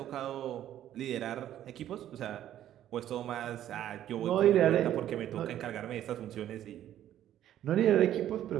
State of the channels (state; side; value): quieter; left; 11.8 dB